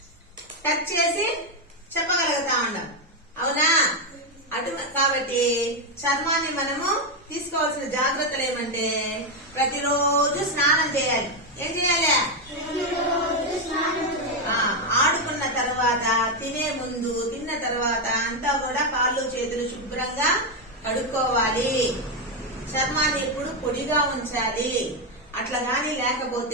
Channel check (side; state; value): both; normal; correlation 0.05